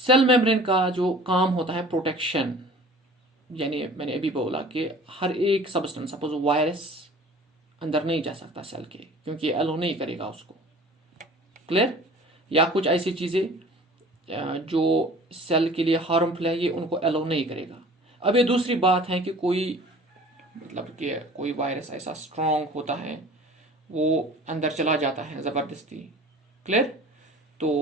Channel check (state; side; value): normal; both; correlation 0.45